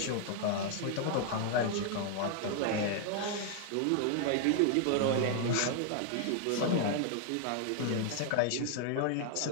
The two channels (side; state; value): both; different; correlation 0.00